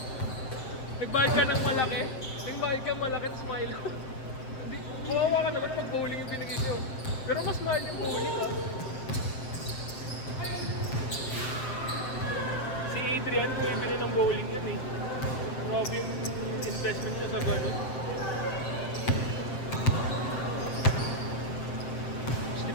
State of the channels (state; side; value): late; right; 7.7 ms